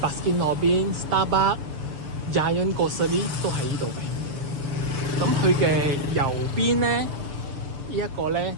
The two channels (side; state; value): left; late; 6.9 ms